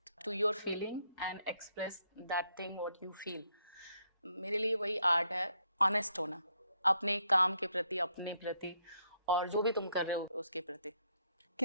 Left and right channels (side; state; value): both; inverted; correlation -0.74